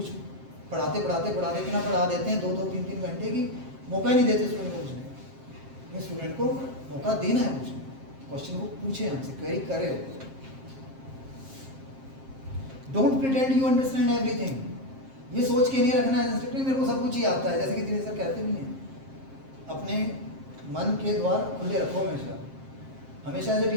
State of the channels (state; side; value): late; left; 7.5 ms